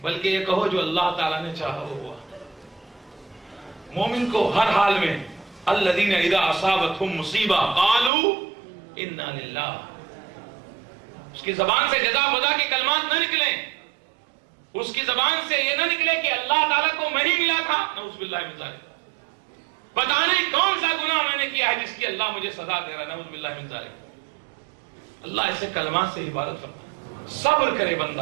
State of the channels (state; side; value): drops out; left; at 8.1 s